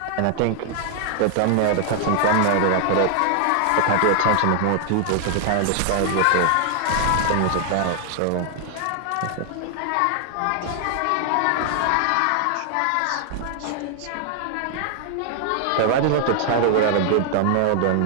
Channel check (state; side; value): different; both; correlation 0.00